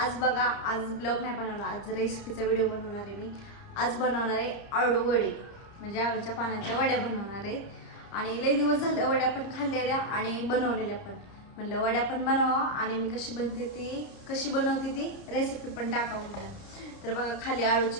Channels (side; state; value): right; late; 31 ms